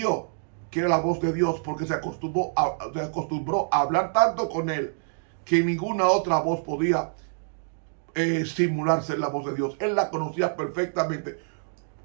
que era la voz de Dios porque se acostumbró a hablar tanto con él que ninguna otra voz podía simular ser la voz de Dios. Él la conocía perfectamente.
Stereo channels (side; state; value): left; silent; digital silence